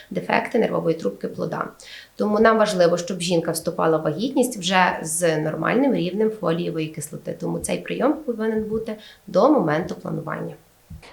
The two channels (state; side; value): identical; both; correlation 1.00